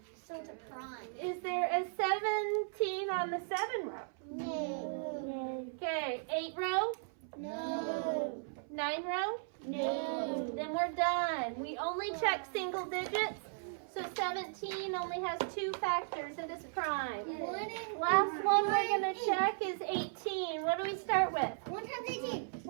So it's a prime. Is there a 17 on the 7 row? No. Okay. 8 row? No. 9 row? No. Then we're done. We only check single digits. So 17 only has 2 factors and it's prime. Last one we're going to check is 18. What do we start with? 1 times 18.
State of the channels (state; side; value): silent; left; 54 dB below the other